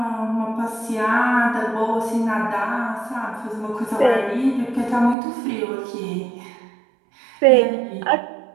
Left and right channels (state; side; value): drops out; left; at 5.2 s